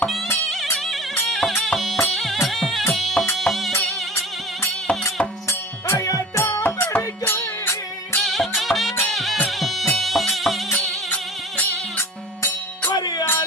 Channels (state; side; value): normal; both; correlation 0.38